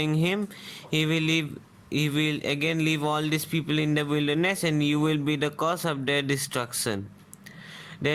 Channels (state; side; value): identical; both; correlation 1.00